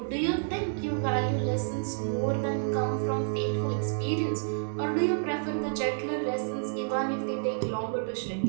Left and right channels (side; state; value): left; silent; 58 dB below the other